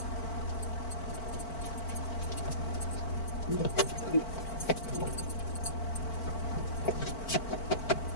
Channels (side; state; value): right; late; 4.5 ms